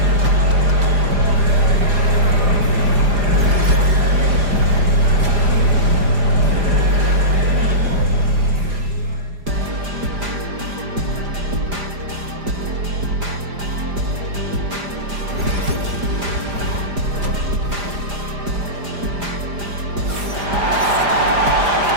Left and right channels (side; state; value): left; late; 4.9 ms